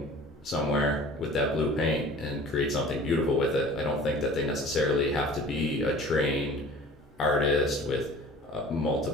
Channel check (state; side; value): normal; both; correlation 0.44